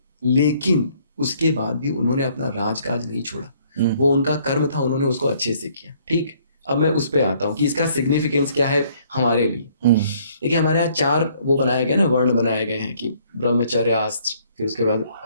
लेकिन उसके बाद भी उन्होंने अपना राजकाज नहीं छोड़ा, वो उनका कर्म था, उन्होंने उसको अच्छे से किया। ठीक, अब मैं उस पे आता हूँ कि इसका सिग्निफिकेंस क्या है हमारे लिए। देखिए, हमारे यहाँ 4 वो बनाए गए ना, वर्ण बनाए गए हैं कि ब्रह्मचर्य, आस्त्र, फिर उसके बाद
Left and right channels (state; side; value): inverted; both; correlation -0.63